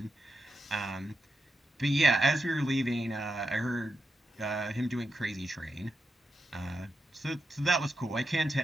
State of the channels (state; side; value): normal; both; correlation 0.87